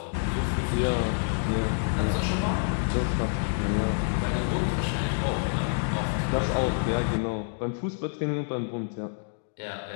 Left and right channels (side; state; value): right; silent; digital silence